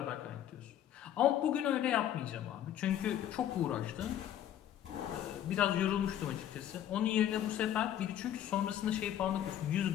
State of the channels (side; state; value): right; quieter; 11.0 dB